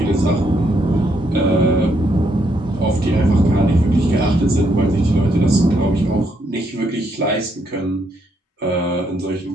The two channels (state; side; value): normal; both; correlation 0.75